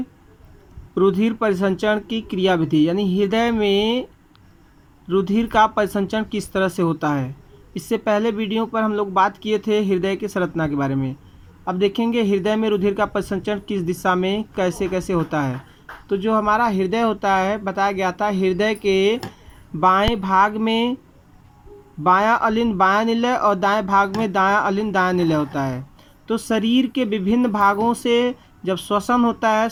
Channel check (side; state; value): both; identical; correlation 1.00